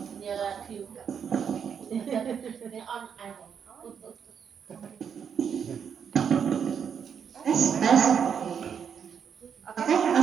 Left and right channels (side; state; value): left; quieter; 7.4 dB